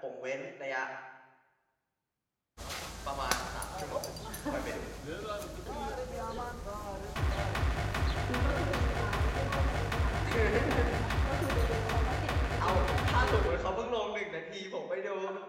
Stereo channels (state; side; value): identical; both; correlation 1.00